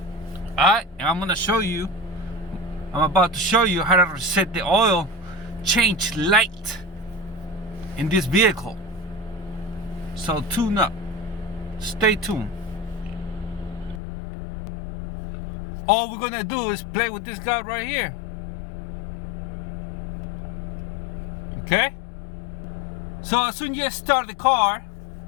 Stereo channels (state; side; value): drops out; right; at 14.0 s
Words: Alright, and I'm about to show you how to reset the oil change light in this vehicle. So tune up. Stay tuned. All we're gonna do is play with this guy right here. Okay? So as soon as you start the car,